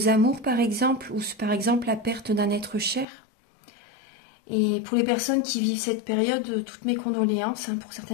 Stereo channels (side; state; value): right; drops out; at 3.1 s